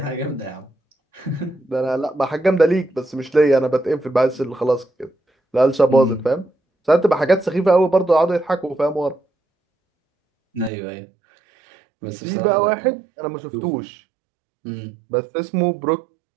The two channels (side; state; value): left; drops out; at 10.7 s